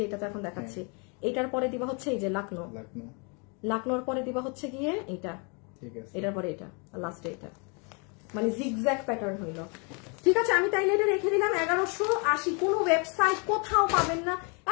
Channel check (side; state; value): right; quieter; 34.4 dB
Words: এটা তো এখন দেখাচ্ছি, এটার পরে দিবা হচ্ছে এই যে লাকনোর পরে দিবা হচ্ছে গিয়ে এইটা, এটার পরে এটা, আর লাস্টে এটা, মানে জিগজ্যাগ প্যাটার্ন হইলো। ঠিক আছে আমি তাইলে এটা রেখে দিলাম 1180। কোনো ওয়েবসাইট কোথাও পাবেন না,